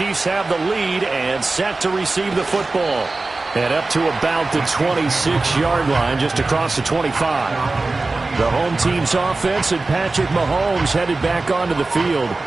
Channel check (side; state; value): left; quieter; 3.4 dB